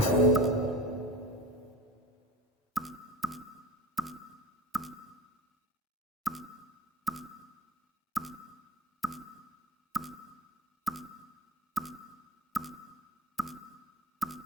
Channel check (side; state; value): both; normal; correlation 0.32